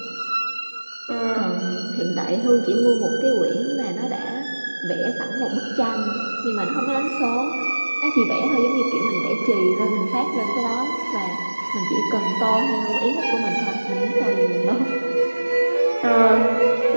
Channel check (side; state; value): both; inverted; correlation -1.00